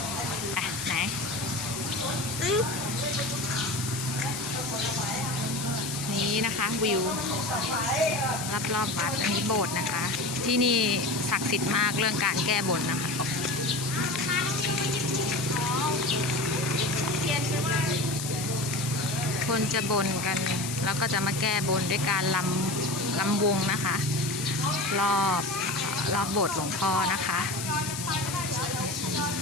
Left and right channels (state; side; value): noise; left; hiss, 6 dB below the sound